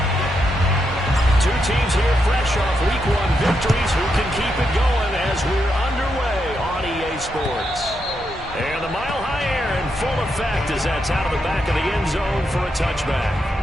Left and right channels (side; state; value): both; normal; correlation 0.82